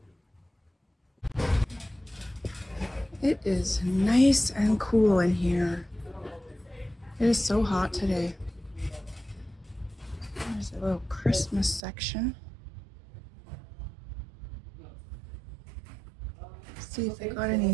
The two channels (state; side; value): drops out; left; at 11.8 s